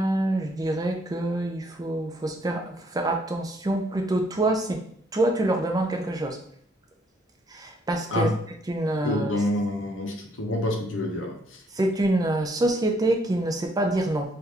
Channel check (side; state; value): both; normal; correlation 0.68